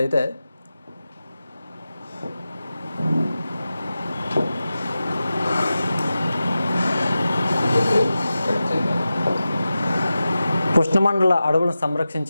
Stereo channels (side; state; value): both; inverted; correlation -0.93